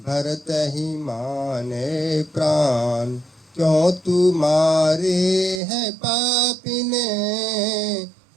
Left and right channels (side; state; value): left; drops out; at 5.6 s